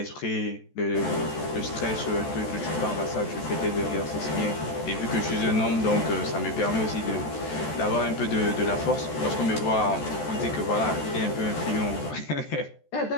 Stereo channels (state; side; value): late; right; 14 ms